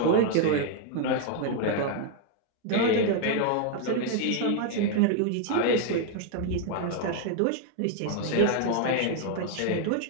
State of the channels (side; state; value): both; different; correlation 0.00